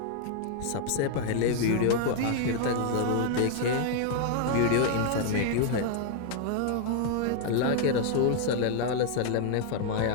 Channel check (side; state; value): both; different; correlation 0.00